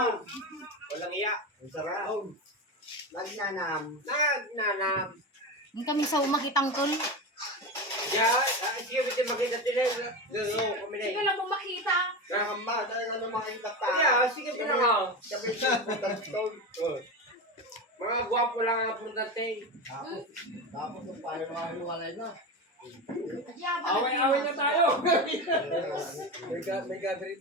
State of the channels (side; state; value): both; normal; correlation 0.21